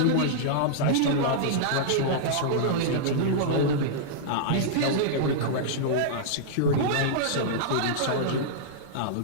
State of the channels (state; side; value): different; both; correlation -0.02